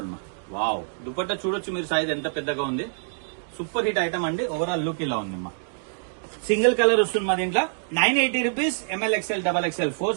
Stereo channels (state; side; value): silent; left; digital silence